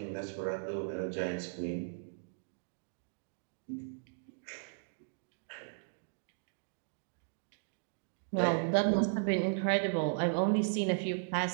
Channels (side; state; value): left; silent; digital silence